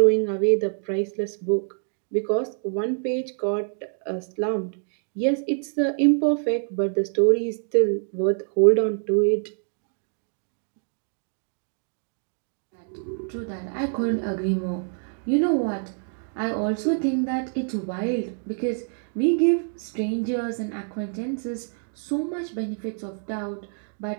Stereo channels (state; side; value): silent; left; 61 dB below the other